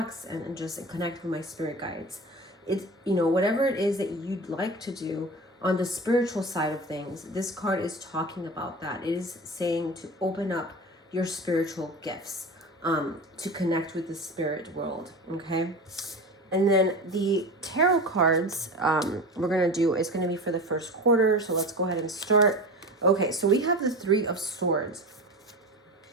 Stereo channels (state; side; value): normal; both; correlation 0.30